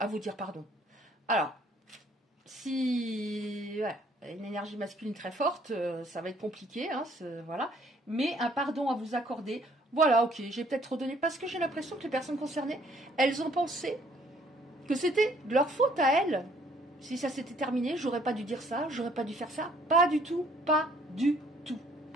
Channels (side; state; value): both; normal; correlation 0.62